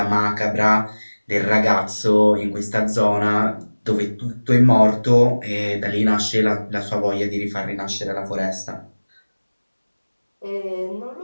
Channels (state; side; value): inverted; both; correlation -1.00